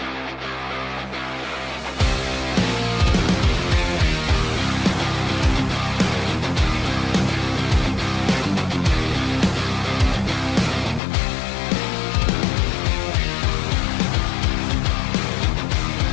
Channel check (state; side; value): drops out; right; at 11.0 s